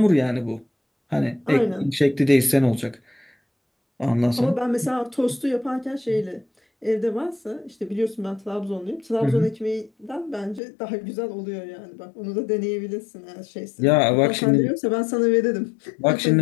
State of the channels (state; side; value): drops out; right; at 10.6 s